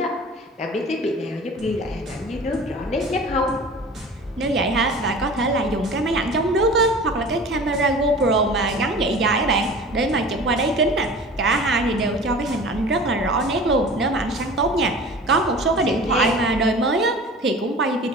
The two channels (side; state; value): both; normal; correlation 0.40